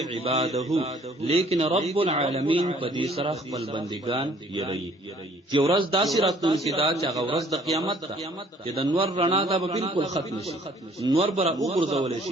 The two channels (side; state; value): both; normal; correlation 0.58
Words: عباده لیکن رب العالمین په دې سره خپل بندگان یری چې ورځ داسې راتلونکې دا چې هغه ورځ د قیامت ده چې د نور رڼا دا به بالکل ختم شي نور بره وګرځول